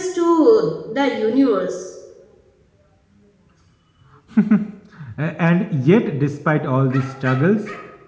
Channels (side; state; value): both; identical; correlation 1.00